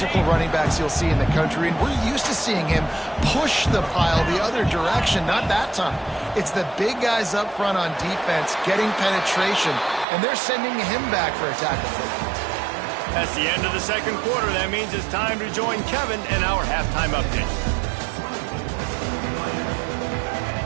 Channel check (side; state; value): left; drops out; at 10.1 s